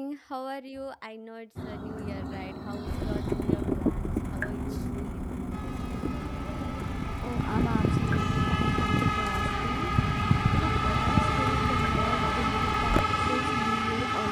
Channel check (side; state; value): both; identical; correlation 1.00